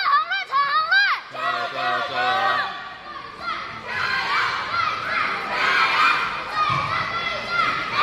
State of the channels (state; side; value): identical; both; correlation 1.00